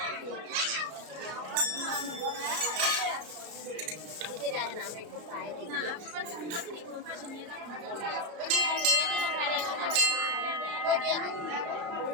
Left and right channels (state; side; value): late; left; 33 ms